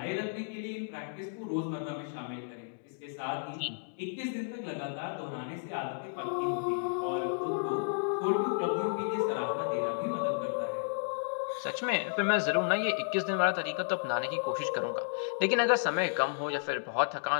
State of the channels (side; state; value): right; silent; digital silence